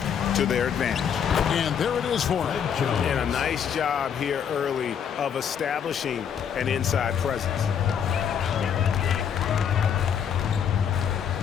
to their advantage. And there it is for him. And a nice job here early of establishing an inside presence.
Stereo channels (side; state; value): right; quieter; 8.0 dB